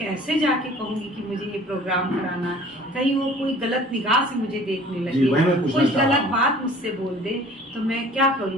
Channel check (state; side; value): normal; both; correlation 0.49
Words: जाके कहूँगी कि मुझे ये प्रोग्राम कराना, कहीं वो कोई गलत निगाह से मुझे देखने लगे, कुछ गलत बात मुझसे बोल दे तो मैं क्या